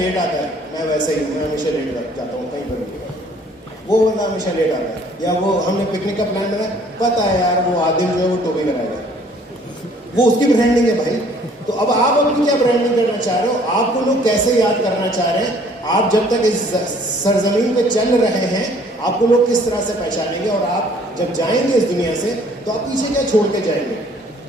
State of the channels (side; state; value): both; normal; correlation 0.58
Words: आता है, मैं वैसे ही हूँ, मैं हमेशा लेट जाता हूँ कहीं पर, वो बंदा हमेशा लेट आता है, या वो हमने पिकनिक का प्लान बनाया, पता है यार वो आदिल जो है वो टोपी लगाएगा, वो उसकी ब्रांडिंग है भाई। तो अब आप अपनी क्या ब्रांडिंग करना चाह रहे हो? आपको लोग कैसे याद करना चाह रहे हैं? आप जब तक इस सरजमीन पे चल रहे हैं, आपको लोग किस तरह से पहचानेंगे, और आप जब जाएंगे इस दुनिया से तो आप पीछे क्या छोड़ के जाएंगे?